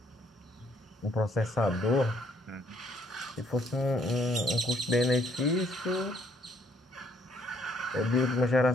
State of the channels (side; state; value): both; normal; correlation 0.66